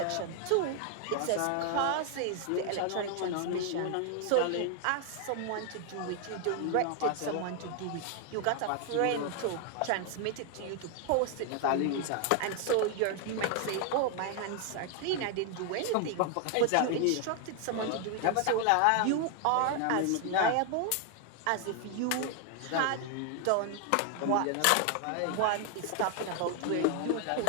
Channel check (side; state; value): both; different; correlation 0.00